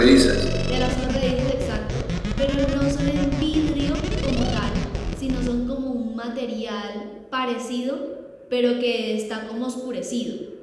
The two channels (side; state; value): both; identical; correlation 1.00